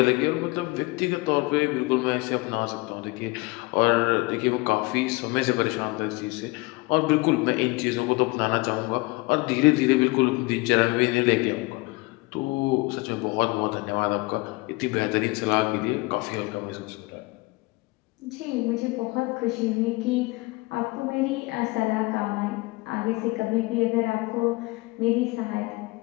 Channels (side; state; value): right; quieter; 24.0 dB